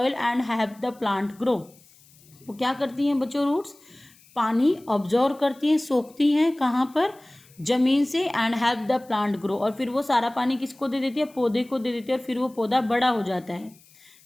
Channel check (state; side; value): noise; left; hiss, 27 dB below the sound